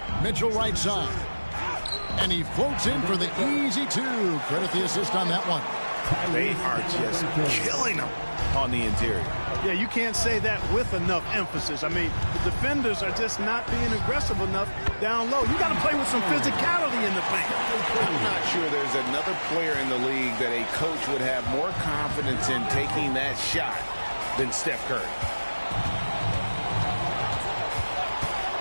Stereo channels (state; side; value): inverted; both; correlation -1.00